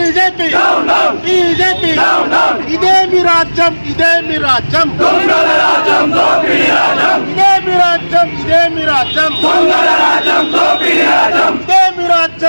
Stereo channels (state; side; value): inverted; both; correlation -1.00